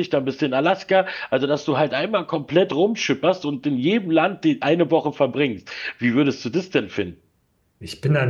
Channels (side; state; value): both; identical; correlation 1.00